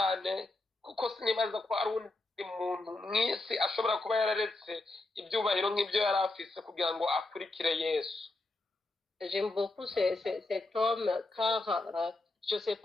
kuko sinibaza ko ari undi muntu mwisi ashobora kuba yararetse ibyubahiro nk'ibyo yari afise kugira ngo akurikire Yesu. J'aime beaucoup cet homme car je ne sais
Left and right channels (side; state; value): right; quieter; 3.0 dB